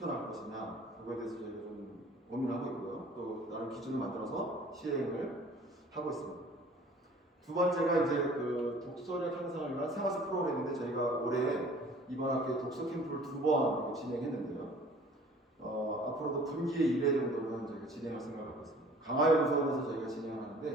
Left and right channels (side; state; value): both; normal; correlation 0.50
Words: 것이냐 그거에 대해서 저희가 좀 고민하고 있고요. 또 나름 기준을 만들어서 시행을 하고 있습니다. 두 번째가 이제 독서력 향상을 위한 생활습 프로그램인데 저희가 올해 이번 학기에 독서 캠프를 2번 진행했는데요. 앞으로도 분기에 1회 정도는 저희가 진행할 생각을 하고 있습니다. 강화연수원에서 저희가 진행을 하는데